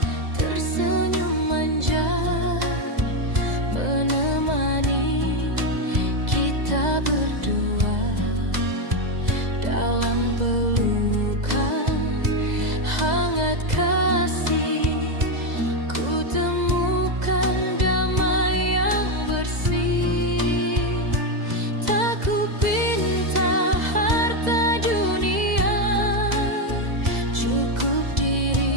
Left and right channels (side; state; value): left; late; 2.0 ms